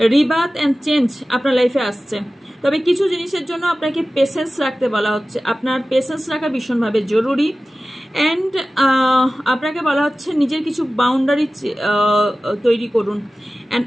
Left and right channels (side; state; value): both; normal; correlation 0.96